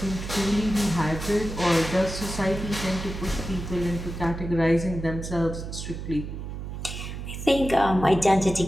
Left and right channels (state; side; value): noise; right; hum, 7 dB below the sound